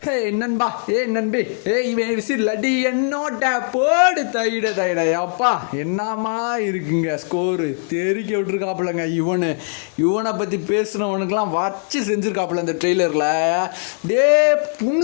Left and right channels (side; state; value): right; silent; 58 dB below the other